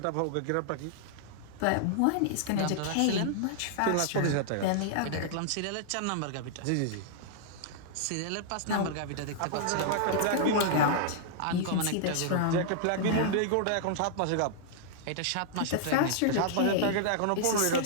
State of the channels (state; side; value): different; both; correlation -0.01